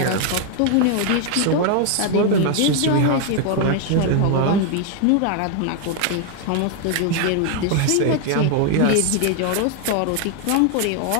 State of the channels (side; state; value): both; different; correlation 0.01